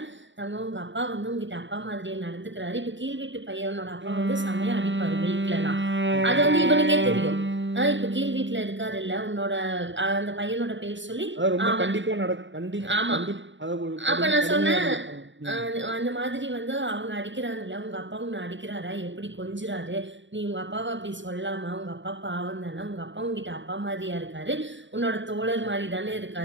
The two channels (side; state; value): left; late; 0.54 ms